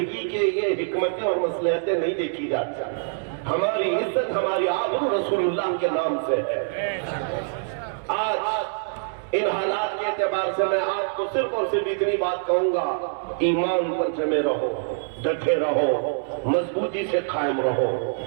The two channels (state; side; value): silent; left; digital silence